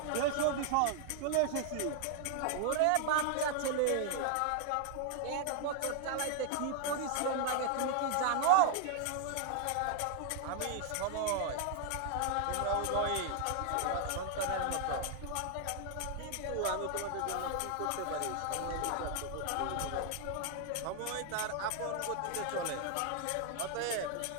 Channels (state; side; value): different; both; correlation 0.00